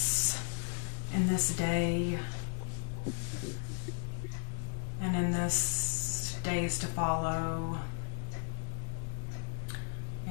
in this day and in this days to follow.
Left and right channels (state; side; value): silent; right; 54 dB below the other